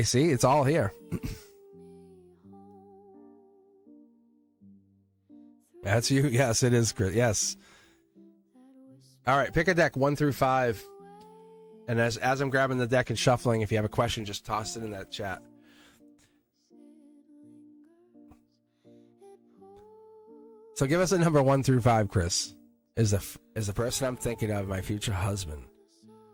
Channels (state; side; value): identical; both; correlation 1.00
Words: see, it's all here. That's you. Yes, it is, Chris. Yes. All right, pick a deck 1 through 5. And as I'm grabbing the deck and shuffling, if you have a question, just toss it in that chat. So give us a number 1 through 5, Chris. Is the person I'm thinking of my future husband?